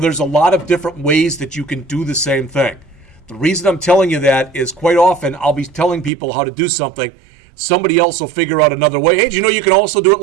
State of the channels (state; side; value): drops out; left; at 6.1 s